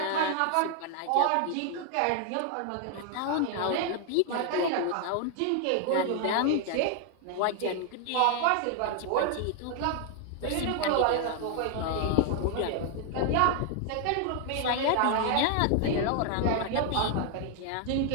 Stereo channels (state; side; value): different; both; correlation 0.00